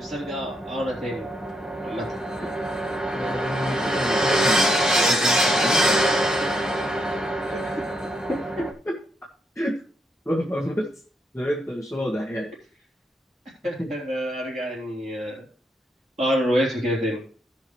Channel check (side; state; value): both; normal; correlation 0.78